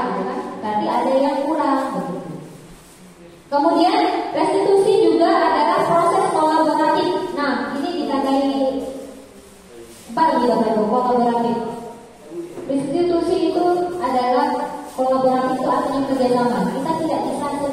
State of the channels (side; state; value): both; identical; correlation 1.00